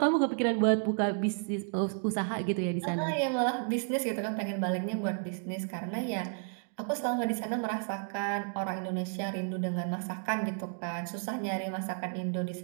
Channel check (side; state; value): left; silent; 56 dB below the other